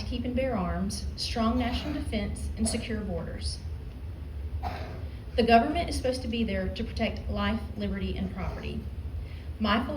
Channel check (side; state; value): both; identical; correlation 1.00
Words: keep and bear arms, strong national defense, and secure borders. The government is supposed to be there to protect life, liberty, and property. My